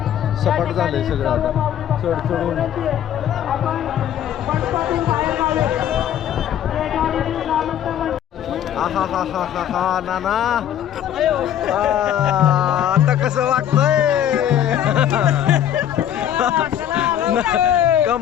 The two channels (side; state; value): right; quieter; 10.4 dB